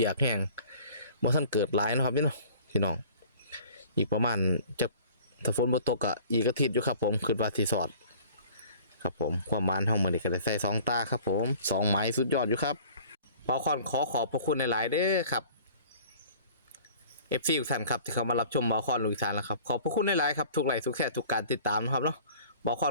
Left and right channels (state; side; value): inverted; both; correlation -0.47